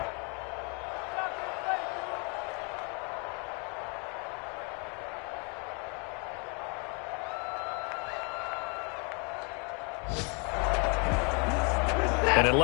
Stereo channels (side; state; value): right; quieter; 34.6 dB